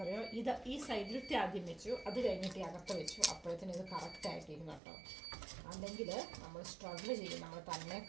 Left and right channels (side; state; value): left; drops out; at 4.8 s